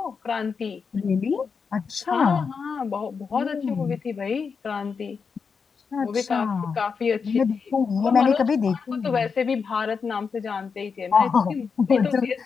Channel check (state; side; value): quieter; right; 5.6 dB